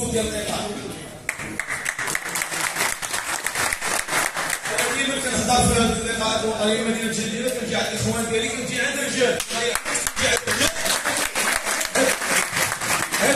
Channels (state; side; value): identical; both; correlation 1.00